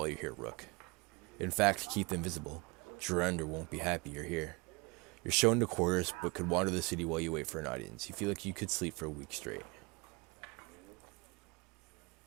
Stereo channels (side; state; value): left; quieter; 27.5 dB